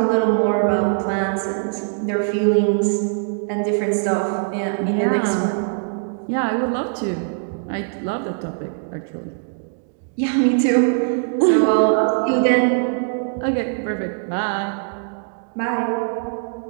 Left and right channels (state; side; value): silent; left; digital silence